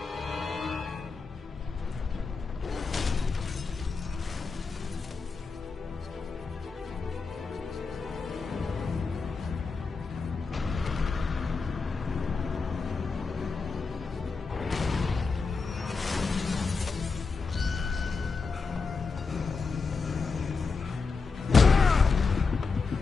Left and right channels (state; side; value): quieter; right; 4.6 dB